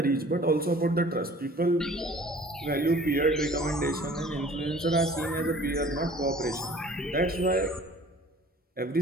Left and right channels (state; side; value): normal; both; correlation 0.49